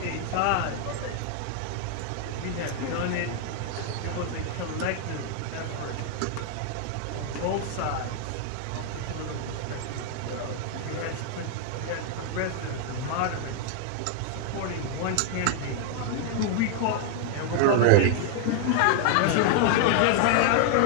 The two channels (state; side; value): different; both; correlation 0.00